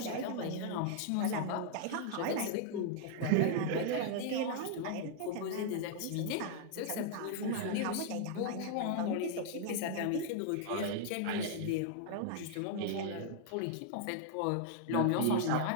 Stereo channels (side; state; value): both; different; correlation 0.00